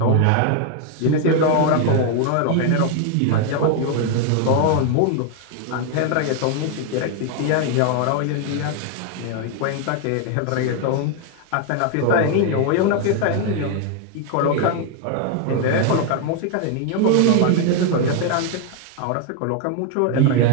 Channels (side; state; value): both; different; correlation 0.01